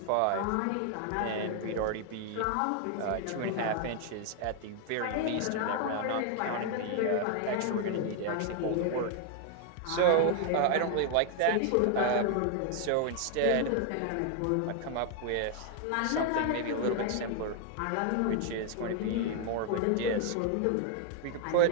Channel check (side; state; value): both; different; correlation 0.00